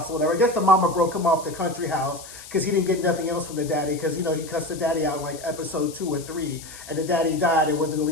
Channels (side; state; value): left; noise; hiss, 15 dB below the sound